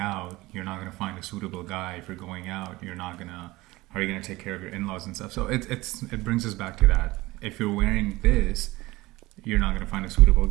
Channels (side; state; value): left; quieter; 20.0 dB